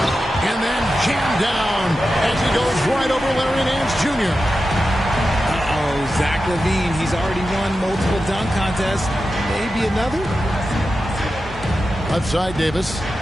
And then jammed down as he goes right over Larry Nance Jr. Uh-oh, Zach Levine. He's already won multiple dunk contests. Maybe another? Left side, Davis.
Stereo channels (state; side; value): normal; both; correlation 0.91